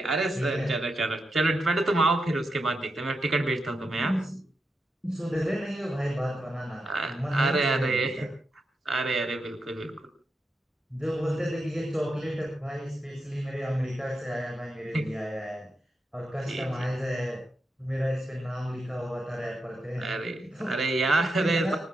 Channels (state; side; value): normal; both; correlation 0.86